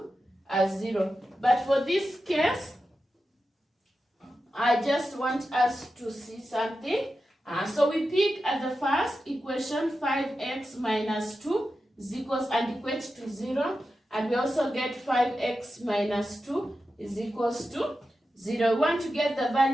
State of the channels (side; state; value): both; normal; correlation 0.91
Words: 0. But for this case, I just want us to see something. So we pick at the first equation 5x minus 2 is equals and equate to 0. And we also get 5x minus 2 is equals to 0. We want to get the